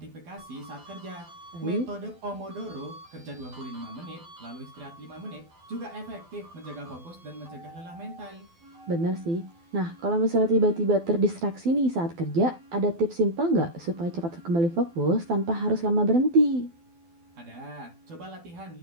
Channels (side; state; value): left; late; 12 ms